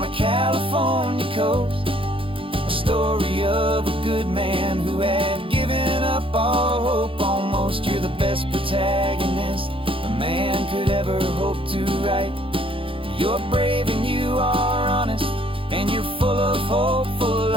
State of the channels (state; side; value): late; left; 0.26 ms